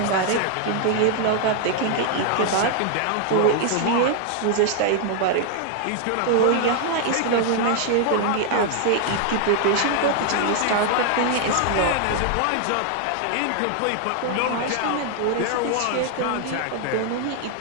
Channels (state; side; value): different; both; correlation 0.00